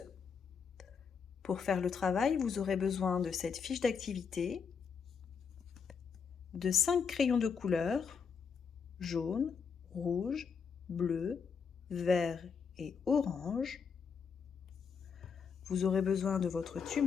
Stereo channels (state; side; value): quieter; right; 6.2 dB